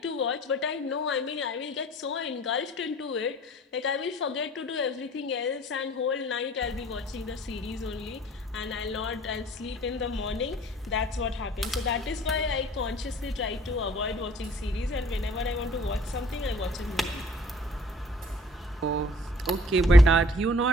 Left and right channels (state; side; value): normal; both; correlation 0.53